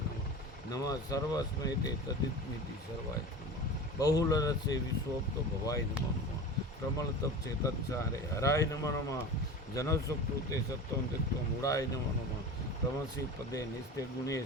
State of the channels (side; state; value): both; normal; correlation 0.33